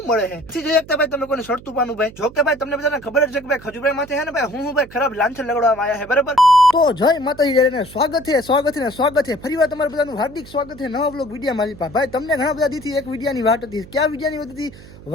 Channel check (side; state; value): right; noise; hum, 19 dB below the sound